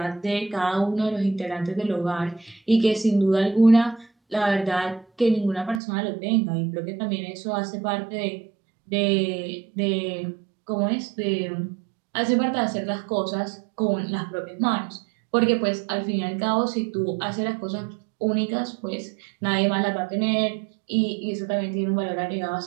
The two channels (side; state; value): left; drops out; at 5.8 s